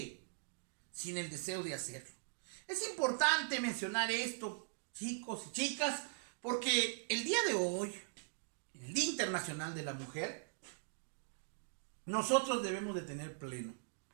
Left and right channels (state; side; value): silent; left; digital silence